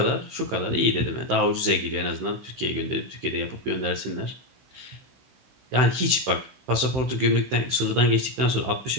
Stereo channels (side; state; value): left; late; 16 ms